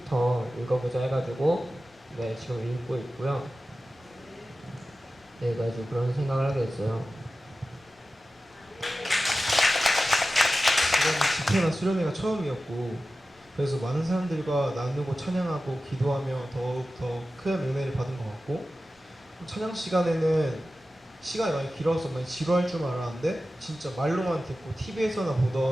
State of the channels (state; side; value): normal; both; correlation 0.94